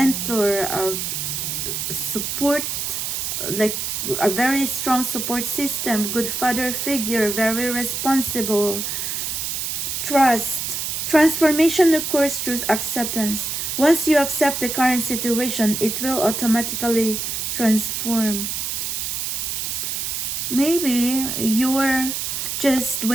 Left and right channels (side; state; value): right; noise; hiss, 2 dB below the sound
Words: a support, like a very strong support system, good father figure, very responsible, trust. Transformation occurs through acceptance. Once you accept the current situation, it will automatically transform. Maybe you're just